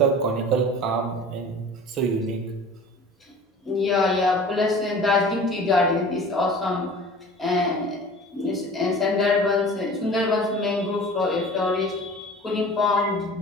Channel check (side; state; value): both; normal; correlation 0.42